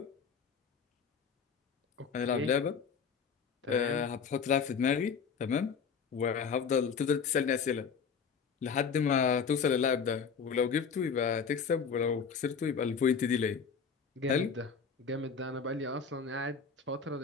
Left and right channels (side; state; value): right; quieter; 6.1 dB